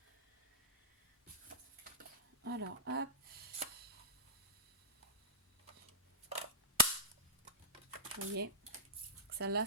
Alors, hop. Vous voyez, Celle-là,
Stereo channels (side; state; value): both; normal; correlation -0.14